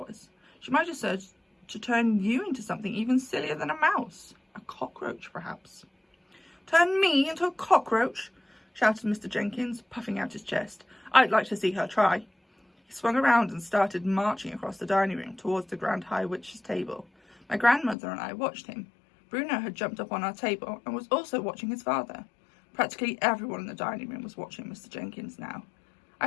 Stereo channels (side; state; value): right; drops out; at 17.9 s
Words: She might have said to turn you into something even sillier than a mouse. A cockroach, perhaps." Turn me into a cockroach? Shouted Mr. Jenkins, puffing out his chest. I'd like to see her try. He swung around and started marching across the dining room towards the Grand High Witch's table. My grandmother and I watched him. Bruno had jumped up on our table and was also watching his father. Practically everyone in the dining room was watching Mr. Jenkins now.